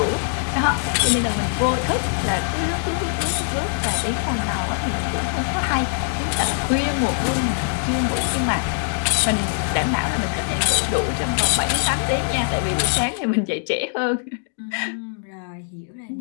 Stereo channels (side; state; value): right; silent; digital silence